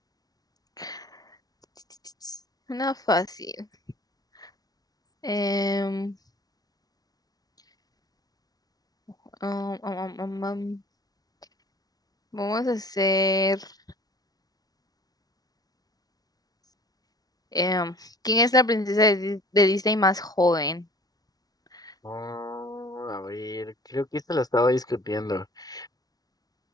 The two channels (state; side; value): late; right; 0.19 ms